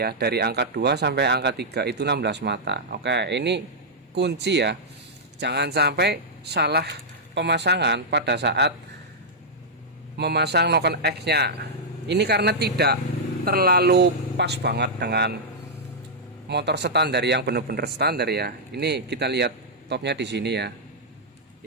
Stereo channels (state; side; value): normal; both; correlation -0.08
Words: dari angka 2 sampai angka 3 itu 16 mata. Oke, ini kunci ya, jangan sampai salah pemasangan pada saat memasang knock-on X nya. Ini karena tidak terlalu pas banget dengan motor standar yang benar-benar standar ya. Ini kita lihat topnya di sini ya,